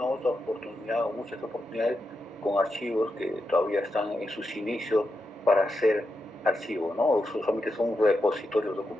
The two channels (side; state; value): both; normal; correlation 0.87